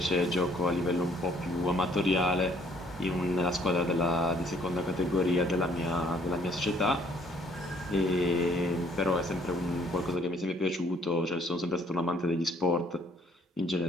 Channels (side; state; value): both; normal; correlation 0.62